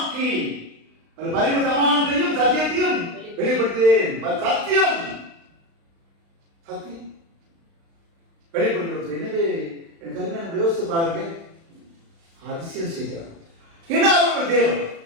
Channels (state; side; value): late; left; 36 ms